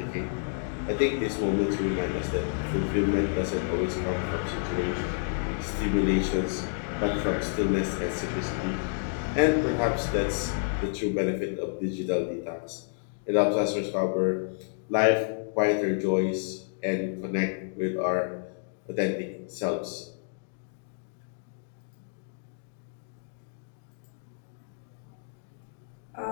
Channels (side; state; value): right; silent; digital silence